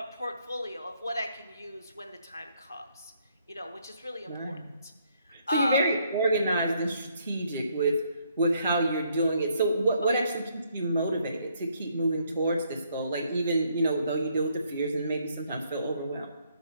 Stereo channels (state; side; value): inverted; both; correlation -0.70